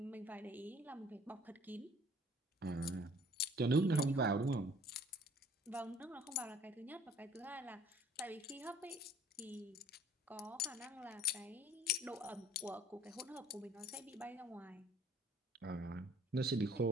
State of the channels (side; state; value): both; normal; correlation 0.55